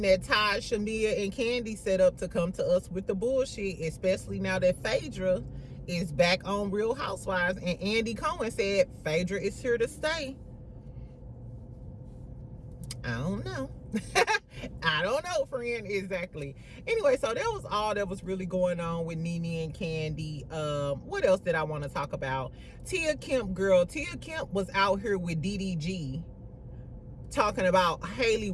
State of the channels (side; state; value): both; identical; correlation 1.00